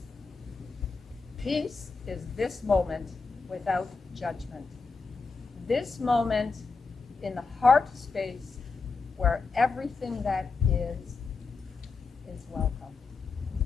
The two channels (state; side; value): quieter; right; 4.4 dB